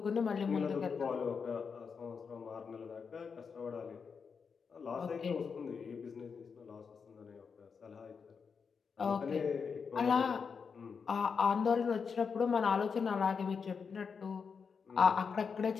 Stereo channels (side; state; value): right; quieter; 5.8 dB